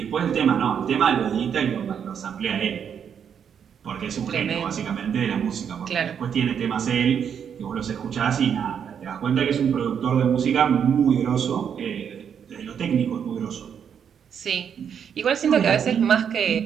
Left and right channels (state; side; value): quieter; left; 7.8 dB